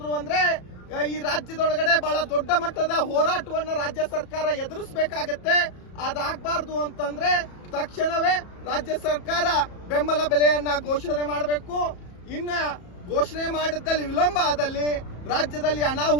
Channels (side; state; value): right; late; 34 ms